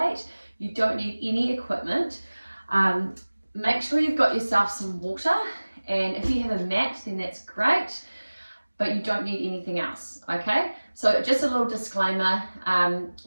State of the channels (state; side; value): inverted; both; correlation -1.00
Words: You don't need any equipment. Make sure you've got yourself some water, and if you have a mat, then that's great, but you don't need anything else, okay? So just a little disclaimer,